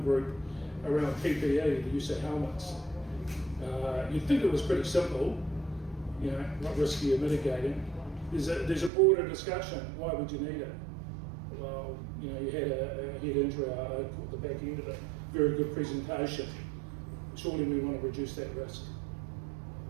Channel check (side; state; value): left; drops out; at 8.9 s